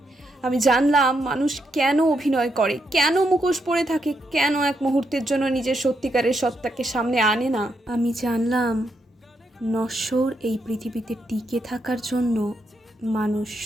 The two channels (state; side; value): normal; both; correlation 0.80